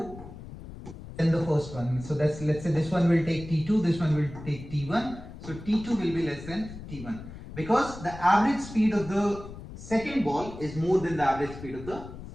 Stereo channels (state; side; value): noise; left; rumble, 13 dB below the sound